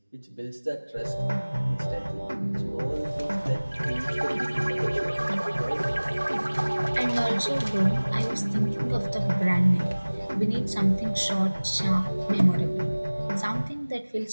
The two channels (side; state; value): both; inverted; correlation -1.00